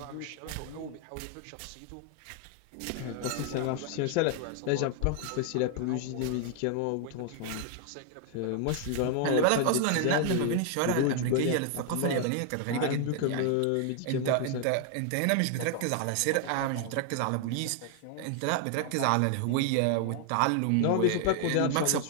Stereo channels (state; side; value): different; both; correlation 0.00